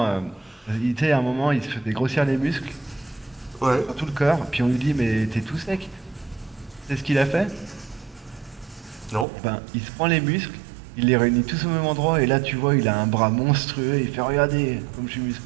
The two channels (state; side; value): drops out; left; at 9.2 s